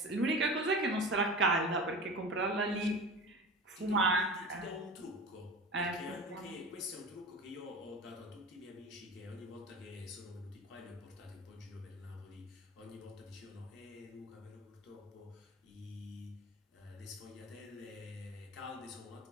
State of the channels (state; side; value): normal; both; correlation 0.32